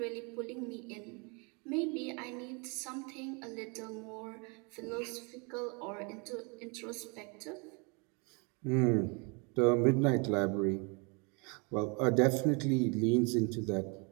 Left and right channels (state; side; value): quieter; left; 32.4 dB